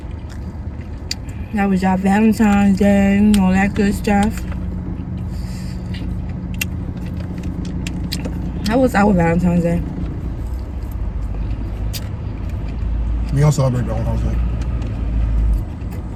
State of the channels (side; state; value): both; identical; correlation 1.00